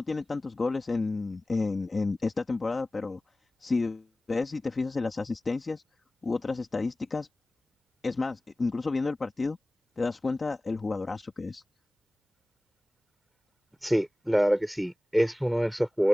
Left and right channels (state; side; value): normal; both; correlation 0.98